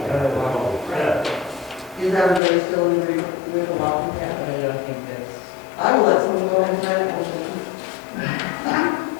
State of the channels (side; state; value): right; drops out; at 2.4 s